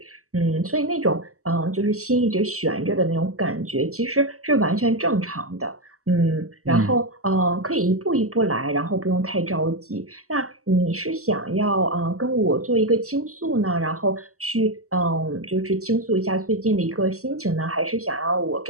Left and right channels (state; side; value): late; left; 0.65 ms